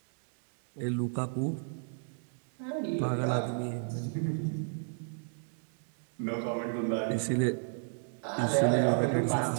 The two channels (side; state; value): left; silent; digital silence